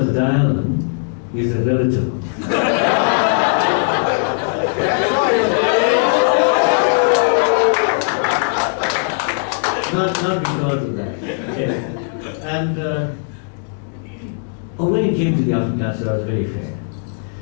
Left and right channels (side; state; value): right; silent; digital silence